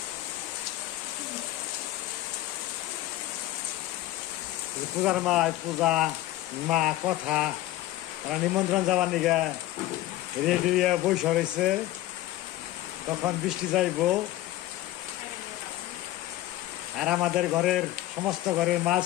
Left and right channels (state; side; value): quieter; right; 15.6 dB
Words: পূজার পূজা মা কথা, তারা নিমন্ত্রণ যাবার নিগে রেডি বৈশা রয়েছে। তখন বৃষ্টি যাইব। আর আমাদের ঘরের সমস্ত ঘরের মাল